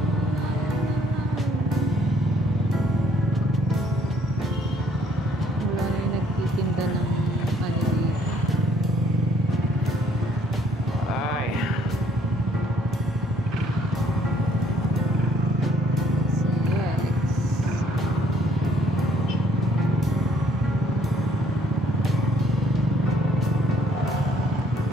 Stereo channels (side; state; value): both; normal; correlation 0.63